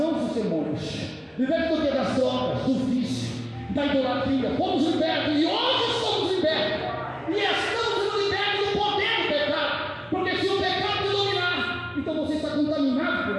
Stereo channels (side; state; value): both; identical; correlation 1.00